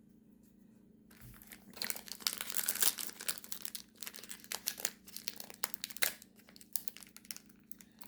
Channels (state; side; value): identical; both; correlation 1.00